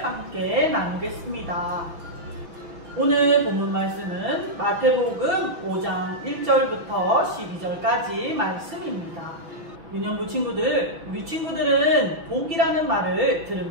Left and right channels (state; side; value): late; left; 6.1 ms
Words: 함께 나누겠습니다. 오늘 본문 말씀은 마태복음 5장 1절부터 12절까지 말씀입니다. 유년부 친구들, 우리 친구들은 복이라는 말을